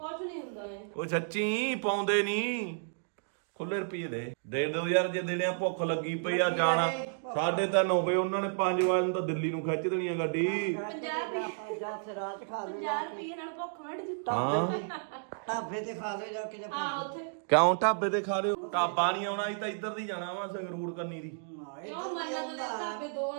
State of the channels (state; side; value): silent; left; digital silence